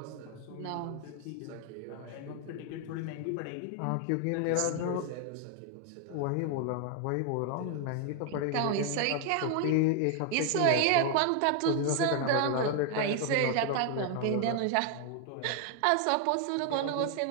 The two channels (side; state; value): both; different; correlation 0.00